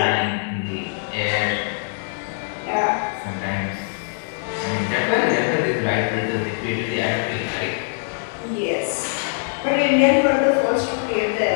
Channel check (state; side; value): silent; right; digital silence